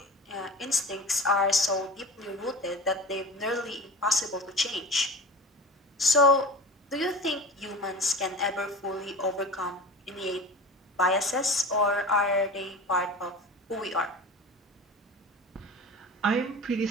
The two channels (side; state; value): both; normal; correlation 0.35